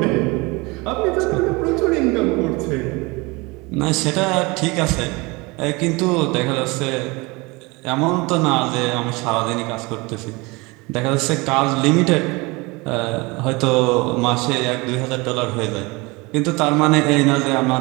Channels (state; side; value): quieter; left; 25.2 dB